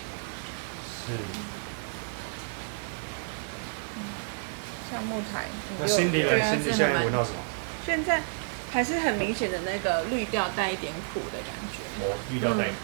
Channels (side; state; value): left; silent; 58 dB below the other